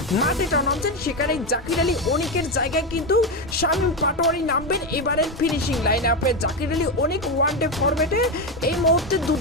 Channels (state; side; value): normal; both; correlation 0.11